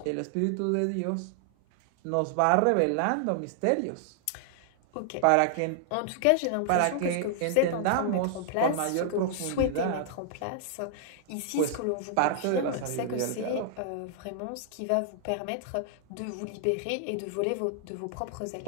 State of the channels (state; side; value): different; both; correlation -0.01